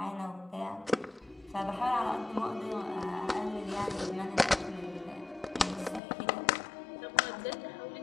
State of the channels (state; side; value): drops out; right; at 6.0 s